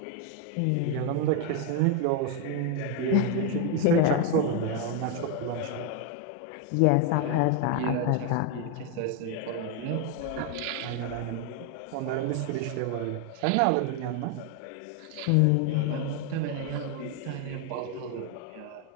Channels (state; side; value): different; both; correlation 0.01